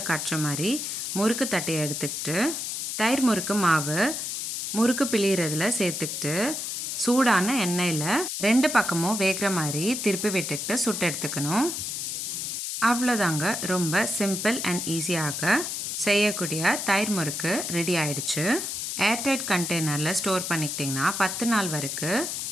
காட்டுற மாதிரி முறுக்கு தட்டையை எடுத்துக்கிட்டு தயிர் முறுக்கு மாவு முறுக்கு பிழியறதுல சேர்த்துக்கிட்டு சூடான எண்ணெயில் 2 பக்கமும் வேகிற மாதிரி திருப்பி விட்டுக்கிட்டு சுட்டு எடுத்துக்கணும். அவ்வளோதாங்க. ரொம்ப சிம்பிள் அண்ட் ஈஸியாக செய்யக்கூடிய தயிர் முறுக்கு ரெடி ஆயிடுச்சு. ஏர்டைட் கண்டெய்னரில் ஸ்டோர் பண்ணிக்கிட்டிங்கன்னா 10 நாள் வரைக்கும்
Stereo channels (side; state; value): left; noise; hiss, 3 dB below the sound